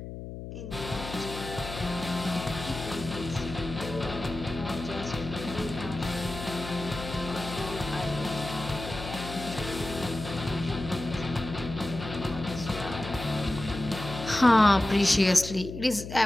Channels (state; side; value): noise; left; hum, 9 dB below the sound